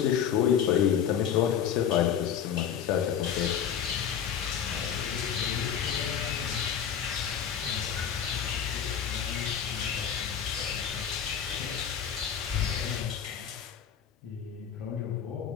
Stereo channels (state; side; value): quieter; right; 8.3 dB